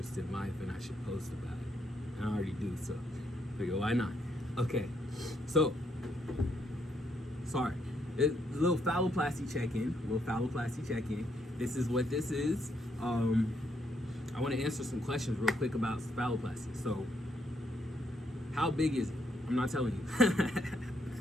in life and I should post about it. And I already do, so I figure, why not? Okay, so, sorry. A little phalloplasty check-in. This is what this is. I want to answer some questions real quick about phalloplasty. So, how big is it? I'm not telling you.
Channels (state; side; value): normal; both; correlation 0.75